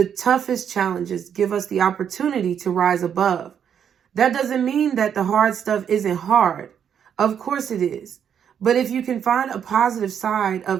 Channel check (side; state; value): left; quieter; 8.3 dB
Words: toughest challenges give us the opportunity to rise above. That doesn't mean that the hard stuff isn't hard. Of course it is. But if you can find a positive side